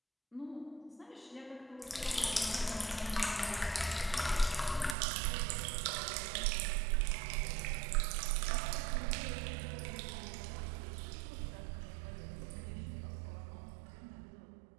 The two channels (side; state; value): left; drops out; at 5.0 s